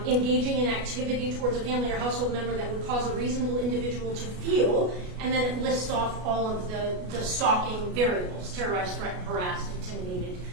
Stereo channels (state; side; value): late; left; 33 ms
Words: engaging in activity towards a family or household member that would cause a reasonable individual to feel, and then it lists off all of the stalking variables: terrorized, threatened, harassed, intimidated.